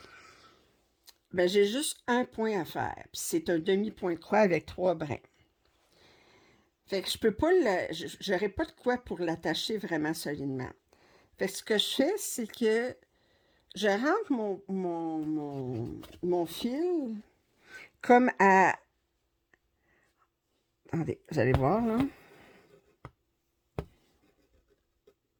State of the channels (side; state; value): both; identical; correlation 1.00